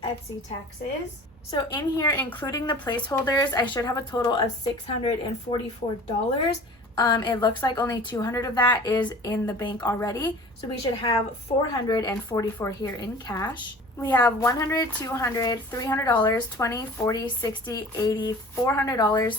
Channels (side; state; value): both; normal; correlation 0.43